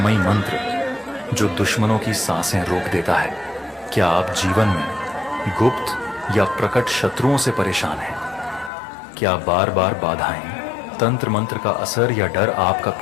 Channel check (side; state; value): right; drops out; at 8.7 s